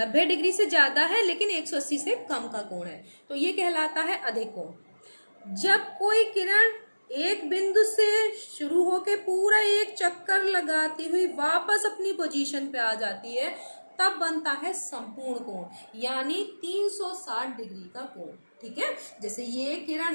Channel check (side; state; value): both; inverted; correlation -1.00